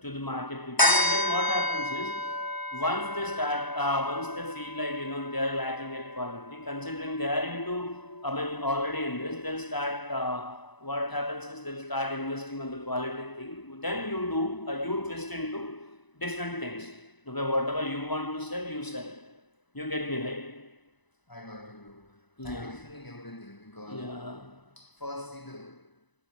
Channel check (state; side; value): late; right; 1.0 ms